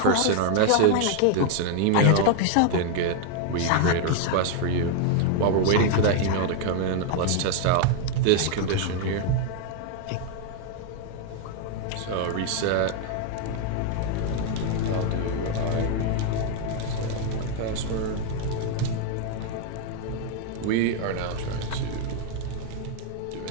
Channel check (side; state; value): both; different; correlation 0.00